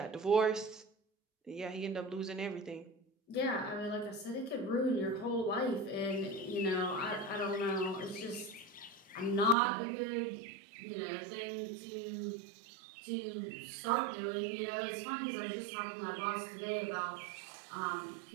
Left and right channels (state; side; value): drops out; left; at 9.6 s